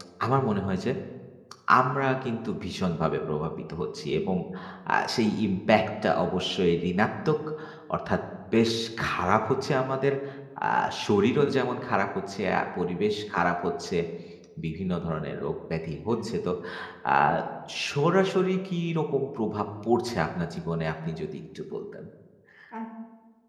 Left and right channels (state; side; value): identical; both; correlation 1.00